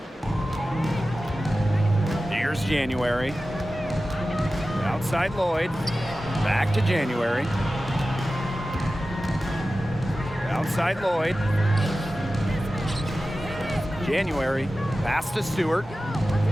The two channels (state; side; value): normal; both; correlation 0.94